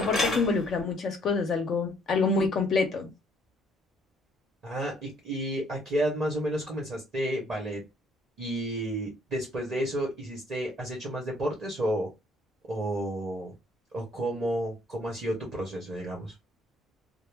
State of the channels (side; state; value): both; normal; correlation 0.64